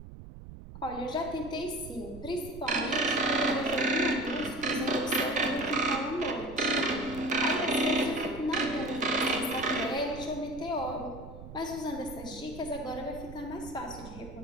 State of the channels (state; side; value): noise; right; rumble, 14 dB below the sound